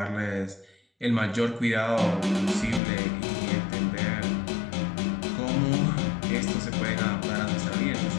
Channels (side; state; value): right; drops out; at 2.8 s